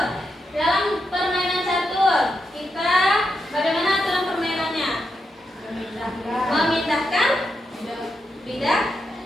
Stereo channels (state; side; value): normal; both; correlation 0.85